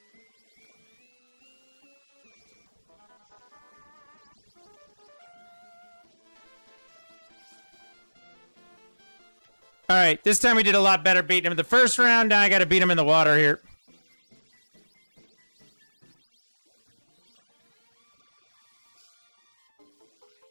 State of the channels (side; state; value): both; inverted; correlation -1.00